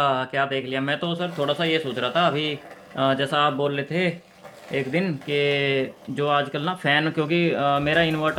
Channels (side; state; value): both; identical; correlation 1.00